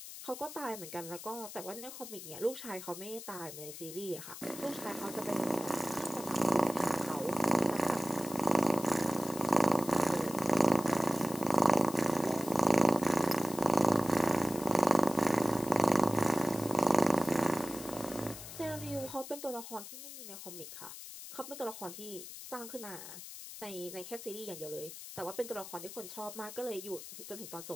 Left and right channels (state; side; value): noise; left; hiss, 12 dB below the sound